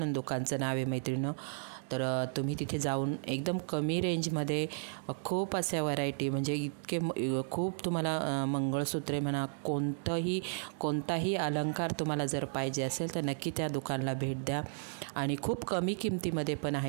दुकानचं नाव आहे मैत्रिणींनो। तर तुम्ही तिथे जाऊन एकदम कमी रेंजमध्ये खूप अशा व्हरायटी म्हणजे इतके खूप तुम्हाला मंगळसूत्रे म्हणा, कोणताही अलंकार तुम्हाला जर पाहिजे असेल तर नक्की त्या दुकानाला भेट द्या आणि खूप कमी किमतीमध्ये पण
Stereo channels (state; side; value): silent; left; digital silence